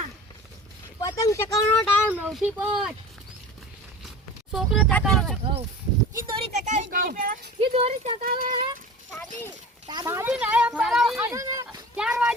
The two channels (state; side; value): normal; both; correlation 0.37